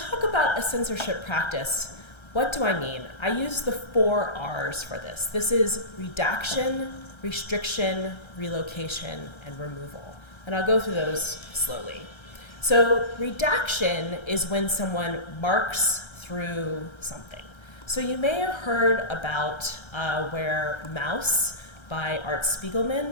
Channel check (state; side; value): late; right; 1.3 ms